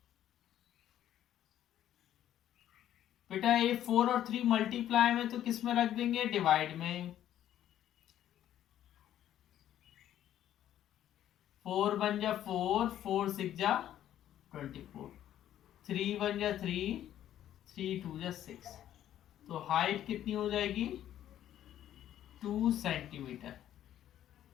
बेटा ये 4 और 3 मल्टीप्लाई में तो किस में रख देंगे, डिवाइड में। 4 बन जा 4, 4 6 जा 24, 3 बन जा 3, 3 2 जा 6, तो हाइट कितनी हो जाएगी 2 सेंटीमीटर।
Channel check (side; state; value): right; quieter; 11.6 dB